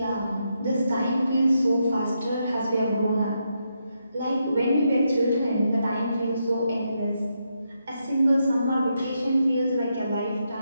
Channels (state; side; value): inverted; both; correlation -0.82